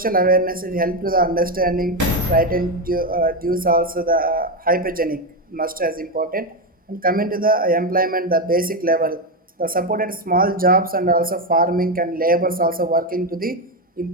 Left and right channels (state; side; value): normal; both; correlation 0.09